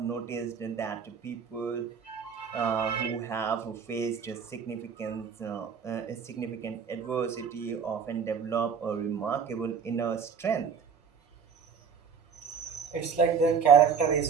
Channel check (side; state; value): left; quieter; 6.6 dB